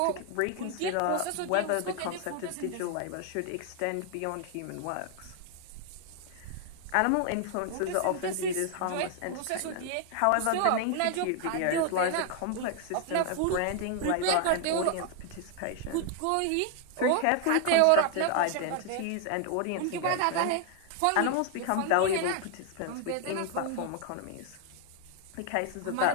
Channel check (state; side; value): different; both; correlation 0.00